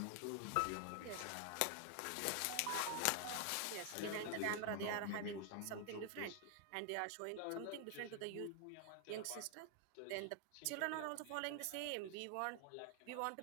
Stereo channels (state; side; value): different; both; correlation 0.00